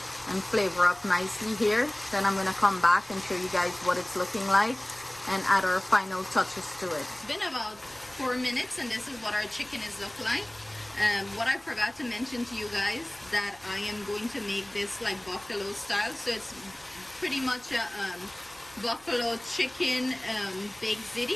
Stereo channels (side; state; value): right; noise; rumble, 28 dB below the sound